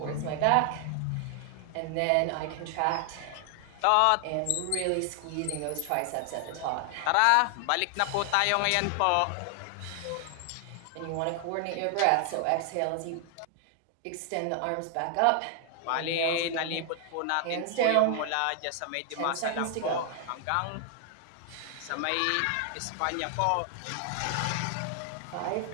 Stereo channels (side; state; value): both; different; correlation 0.00